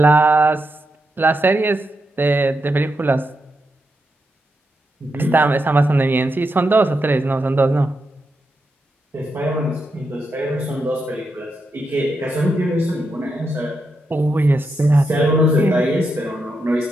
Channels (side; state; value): both; normal; correlation 0.84